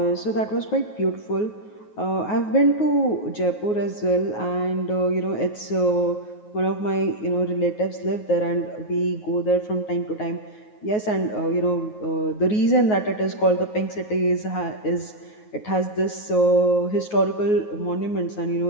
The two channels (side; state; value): right; late; 9.4 ms